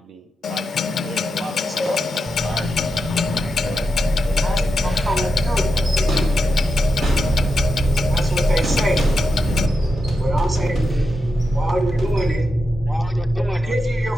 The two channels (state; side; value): normal; both; correlation 0.87